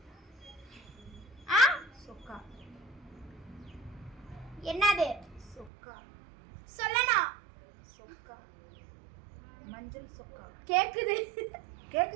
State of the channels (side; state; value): left; drops out; at 5.7 s